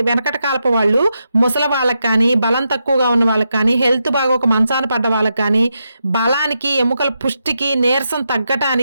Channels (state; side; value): inverted; both; correlation -0.85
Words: వెనకట కాలపు వాళ్ళు, ముసలి వాళ్ళకి కానీ, బలం తక్కువగా ఉన్న వాళ్ళకి కానీ, హెల్త్ బాగా ఒక మంచాన పడ్డ వాళ్ళకి కానీ, బలానికి, ఎముకల పుష్టికి, నీరసం